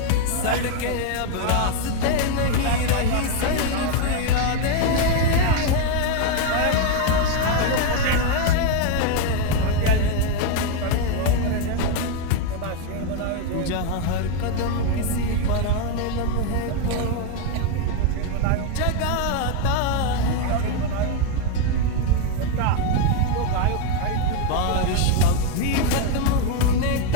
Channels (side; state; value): both; different; correlation 0.01